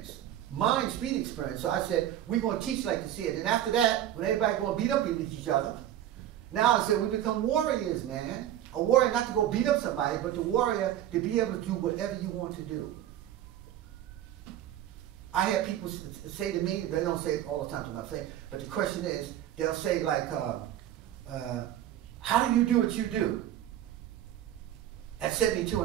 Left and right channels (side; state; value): left; quieter; 12.0 dB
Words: Mind street experience. So I said, we're going to teach like to see it. And after that, when everybody going to beat up each other, now I said, we become warriors, man. A warrior not to go beat up somebody, but the warrior to be able to do whatever you want to do. I have people say to me, they don't say it all the time to my face, but the question is, they'll say like, how do you do what you do? At 72